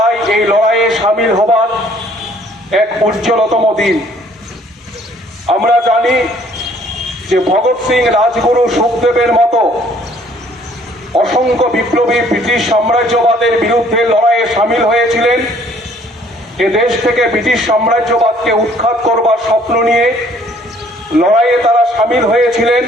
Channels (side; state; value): both; normal; correlation 0.59